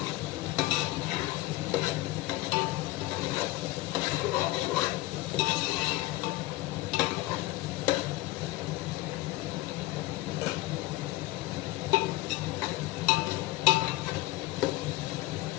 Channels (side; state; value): right; quieter; 18.7 dB